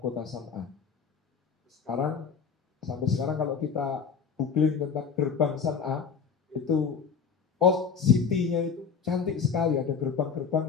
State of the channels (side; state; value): right; quieter; 6.2 dB